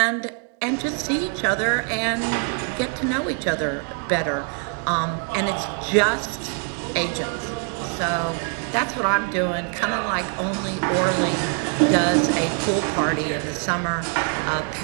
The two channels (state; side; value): quieter; left; 39.8 dB